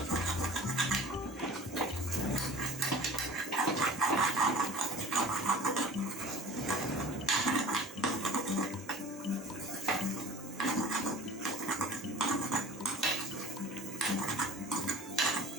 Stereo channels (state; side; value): normal; both; correlation 0.42